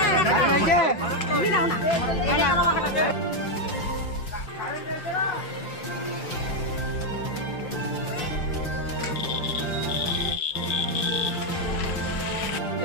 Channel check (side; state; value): right; late; 5.8 ms